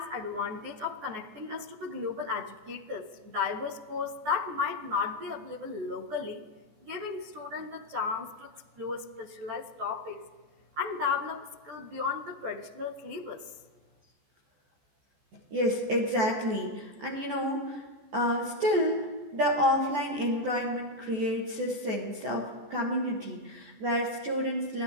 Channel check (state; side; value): late; left; 14 ms